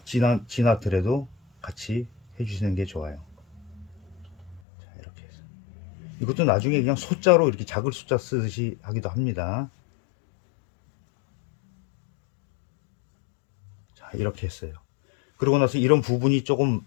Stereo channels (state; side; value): drops out; right; at 4.6 s